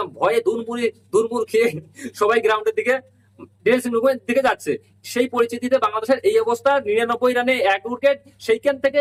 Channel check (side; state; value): both; identical; correlation 1.00